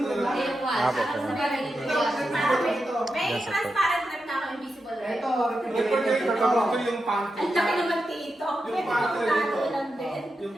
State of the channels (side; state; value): both; normal; correlation 0.88